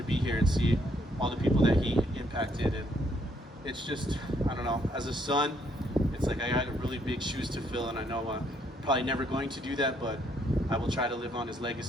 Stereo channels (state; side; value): normal; both; correlation 0.70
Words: be here and see all the people that he impacted. And it's just, I don't know, as a son, it's like I got really big shoes to fill, and I know I'm probably never going to do that, but I will try to live on his